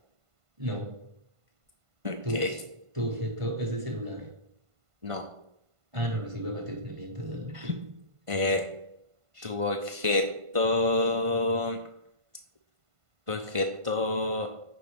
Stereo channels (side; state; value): left; late; 1.5 ms